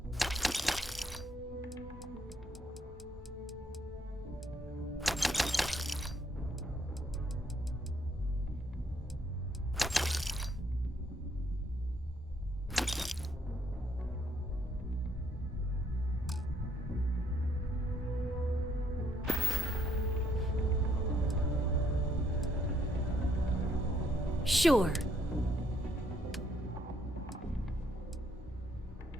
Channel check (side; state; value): both; normal; correlation 0.70